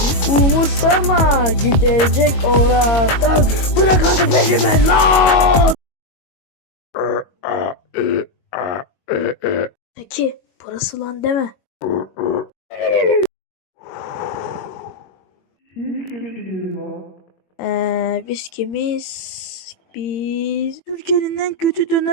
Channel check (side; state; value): right; late; 21 ms